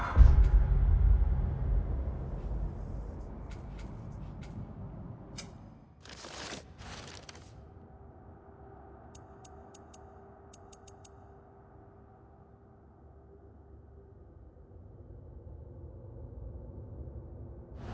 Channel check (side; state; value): both; identical; correlation 1.00